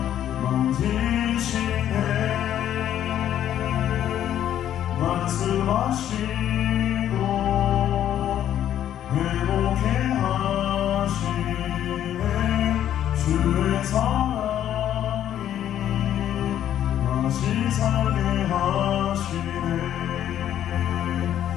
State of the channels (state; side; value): quieter; right; 10.9 dB